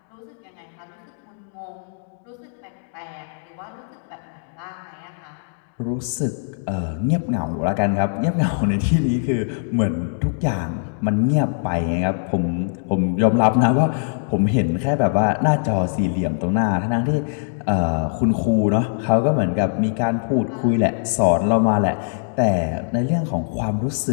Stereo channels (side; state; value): right; silent; digital silence